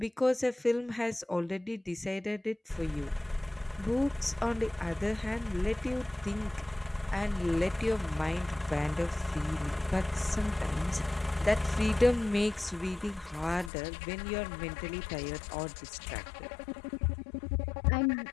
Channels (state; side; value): drops out; right; at 13.7 s